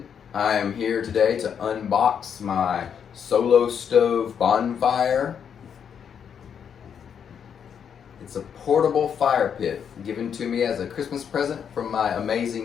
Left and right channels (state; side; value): quieter; right; 7.7 dB